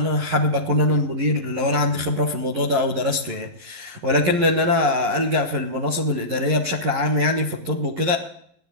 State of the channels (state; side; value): late; left; 11 ms